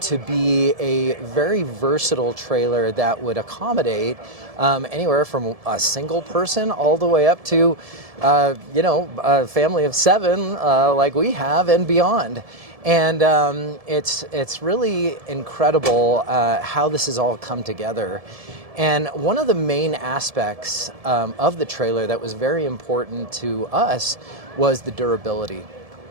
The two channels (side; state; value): left; late; 1.7 ms